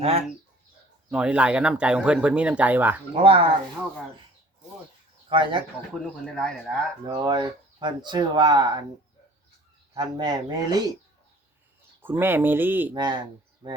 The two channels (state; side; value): normal; both; correlation 0.51